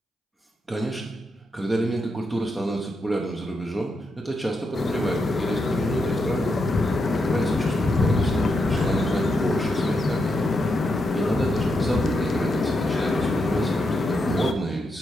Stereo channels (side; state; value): both; normal; correlation 0.83